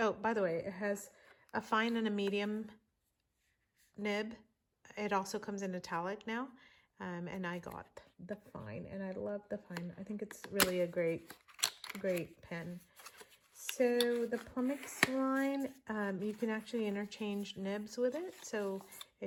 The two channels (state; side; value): identical; both; correlation 1.00